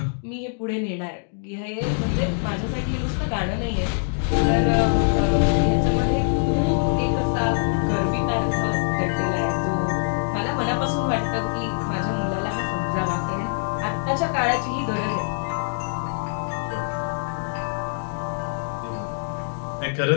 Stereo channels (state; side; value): silent; right; 60 dB below the other